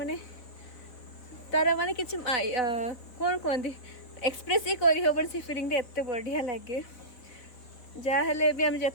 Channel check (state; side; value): late; right; 4.0 ms